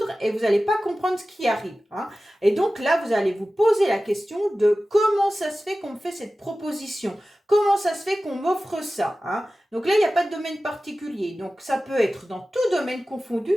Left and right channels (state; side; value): normal; both; correlation 0.95